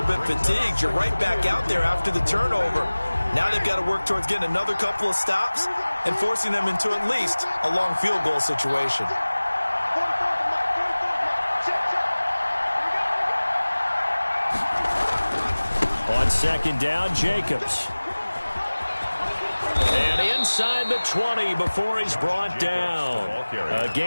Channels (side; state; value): both; inverted; correlation -1.00